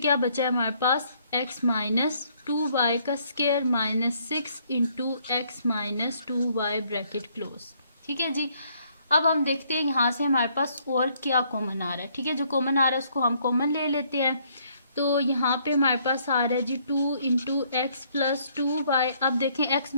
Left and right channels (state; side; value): inverted; both; correlation -0.67